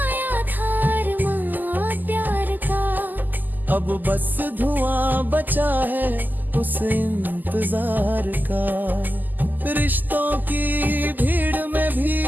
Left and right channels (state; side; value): late; left; 0.086 ms